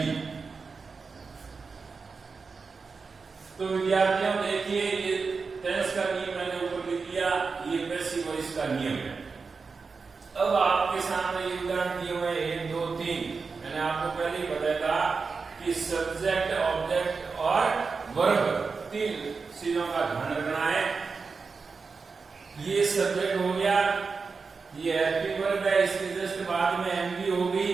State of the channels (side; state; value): left; quieter; 4.8 dB